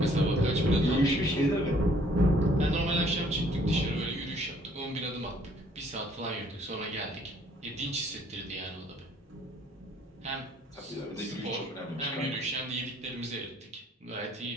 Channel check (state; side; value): normal; both; correlation 0.62